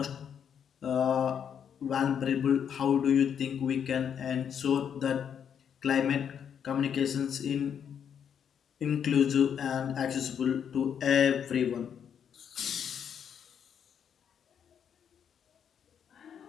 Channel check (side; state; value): right; quieter; 8.1 dB